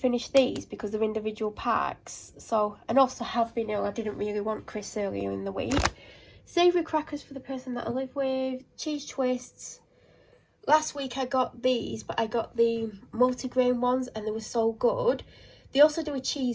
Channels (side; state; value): both; identical; correlation 1.00